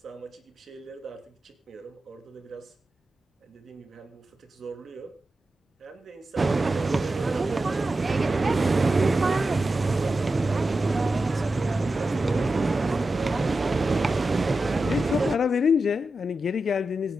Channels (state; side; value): normal; both; correlation 0.91